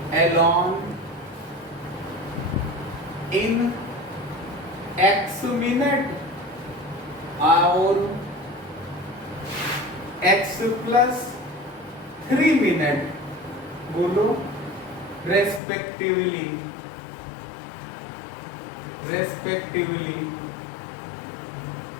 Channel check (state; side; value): drops out; right; at 15.6 s